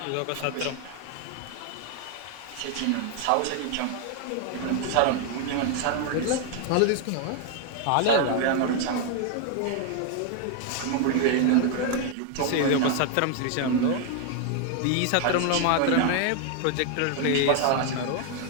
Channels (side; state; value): both; different; correlation 0.00